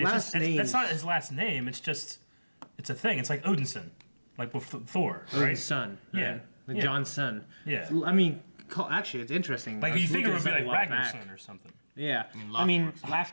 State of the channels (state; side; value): inverted; both; correlation -1.00